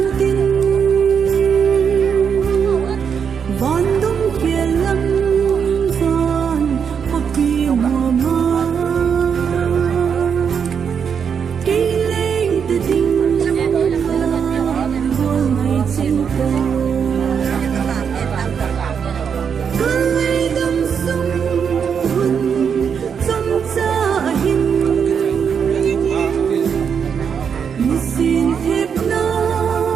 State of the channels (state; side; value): quieter; left; 7.0 dB